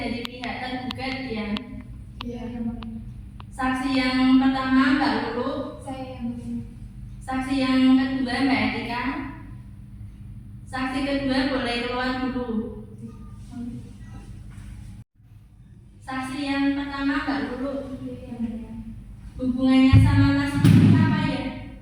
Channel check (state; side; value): identical; both; correlation 1.00